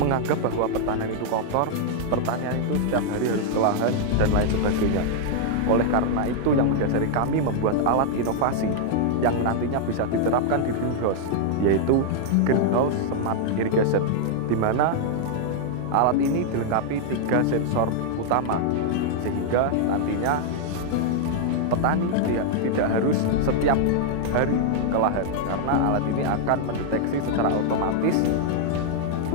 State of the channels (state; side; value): different; both; correlation 0.00